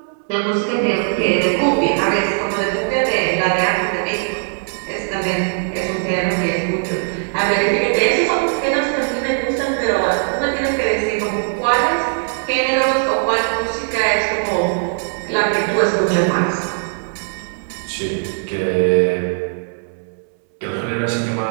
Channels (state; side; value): silent; left; 63 dB below the other